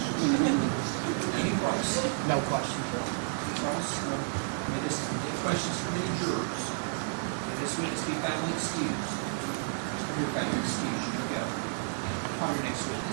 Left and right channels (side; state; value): left; silent; digital silence